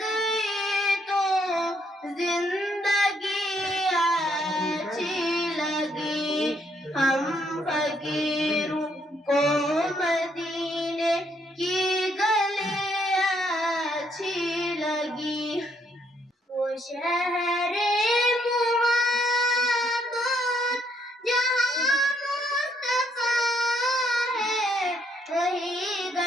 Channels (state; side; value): normal; both; correlation 0.71